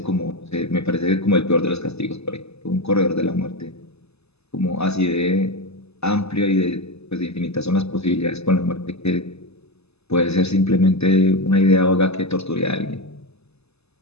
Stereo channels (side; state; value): right; late; 0.79 ms